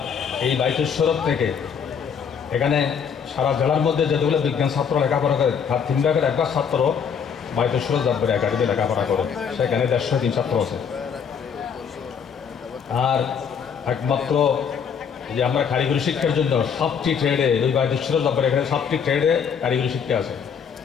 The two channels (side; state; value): right; quieter; 7.0 dB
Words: এই বাইদেশ্বরত থেকে এখানে সারা জেলার মধ্যে যেগুলো বিজ্ঞান ছাত্র লেখাপড়া করে তার 3 ভাগের 1 ভাগ ছাত্র বাইদেশ্বর জব্বার একাডেমি লেখাপড়া করে, সেখানে 150 ছাত্র আছে। আর একমাত্র যে আমরা কারিগরি শিক্ষার জন্য 7টি ট্রেডে ওই বাইদেশ্বর জব্বার এখানে 7টি ট্রেডে কারিগরি শিক্ষা আছে।